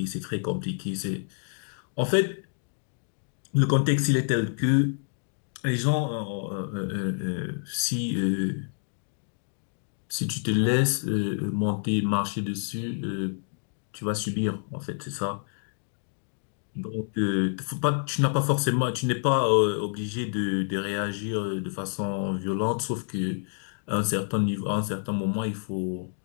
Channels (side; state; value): right; silent; digital silence